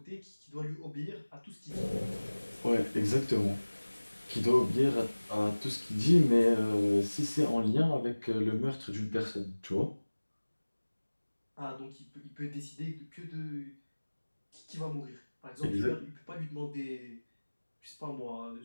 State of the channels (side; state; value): both; inverted; correlation -1.00